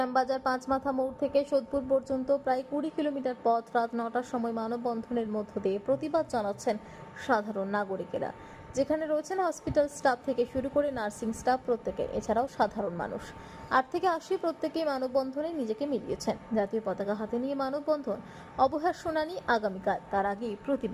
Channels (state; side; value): identical; both; correlation 1.00